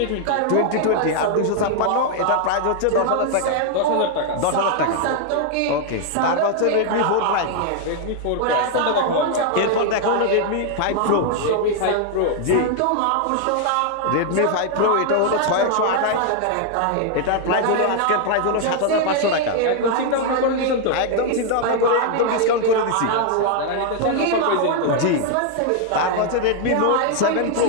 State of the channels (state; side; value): different; both; correlation 0.00